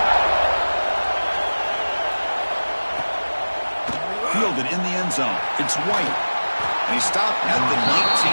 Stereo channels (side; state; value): both; inverted; correlation -1.00